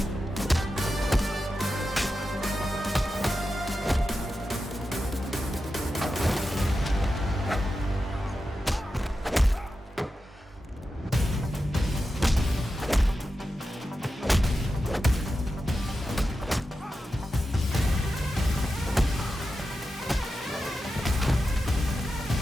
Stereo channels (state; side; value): normal; both; correlation 0.91